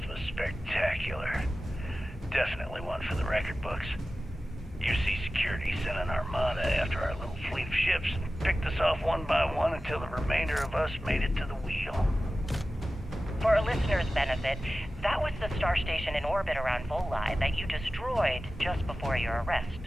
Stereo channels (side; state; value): both; normal; correlation 0.95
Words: was spectacular. Definitely one for the record books. UC Security sent an armada after our little fleet of ships and picked us off one by one until the remainder of us made it to the wheel. For our listeners' benefit, that was the star station in orbit around Voli that you destroyed just before your arrest,